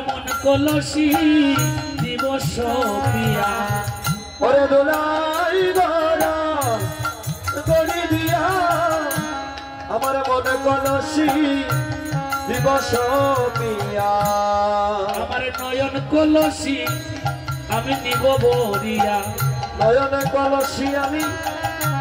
মন কলসি দিব সপিয়া। ওরে দোলাই গোরা গড়ি দিয়া আমার মনে কলসি দিব সপিয়া। আমার নয়ন কলসি আমি নিব বরিয়া। নয়নে কলসি আমি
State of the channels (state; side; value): identical; both; correlation 1.00